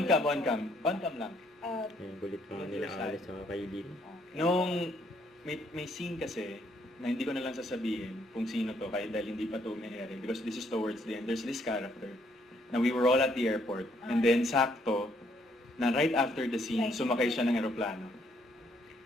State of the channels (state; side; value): normal; both; correlation 0.68